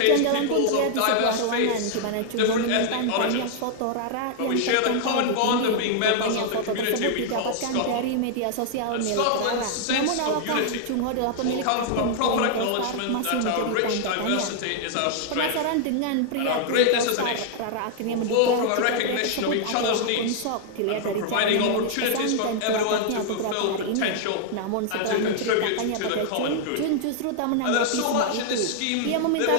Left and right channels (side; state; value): both; different; correlation -0.01